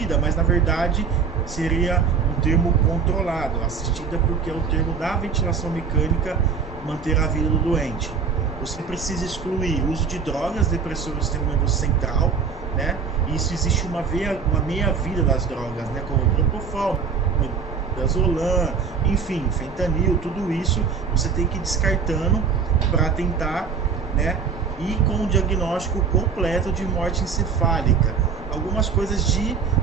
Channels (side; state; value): left; quieter; 6.0 dB